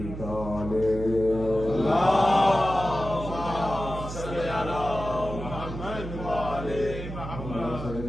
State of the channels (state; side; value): noise; right; hum, 8 dB below the sound